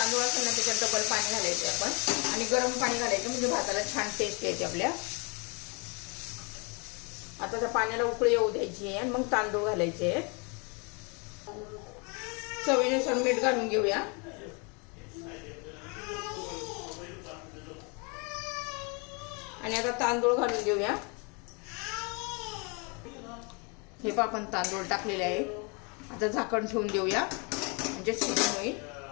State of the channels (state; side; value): quieter; right; 32.8 dB